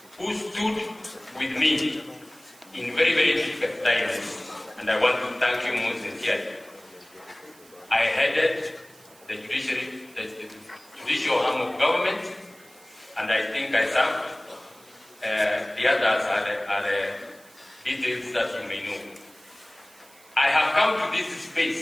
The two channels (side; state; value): right; noise; hiss, 25 dB below the sound